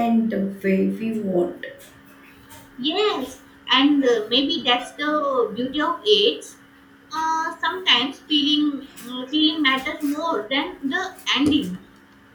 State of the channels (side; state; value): both; identical; correlation 1.00